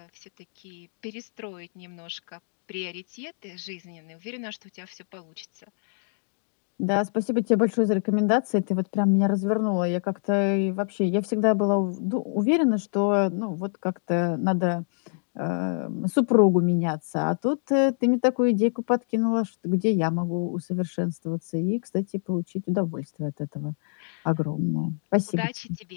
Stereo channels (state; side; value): silent; right; digital silence